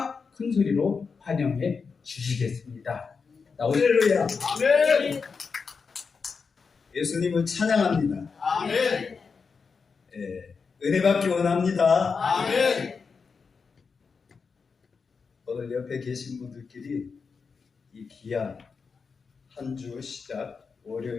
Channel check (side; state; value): right; quieter; 5.2 dB